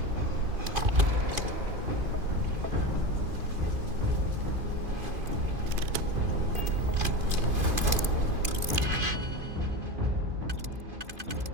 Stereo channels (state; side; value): late; left; 2.5 ms